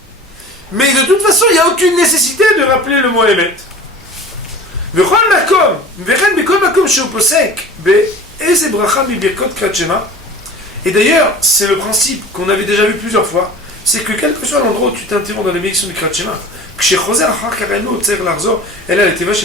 Mais de toute façon, il n'y a aucune nécessité de rappeler le mot Emet. Et d'ailleurs, c'est le principe qu'on avait déjà vu plusieurs fois, c'est que quel que soit l'endroit où tu t'interromps dans les bénédictions du Kriyat Shema,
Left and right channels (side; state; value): both; normal; correlation 0.40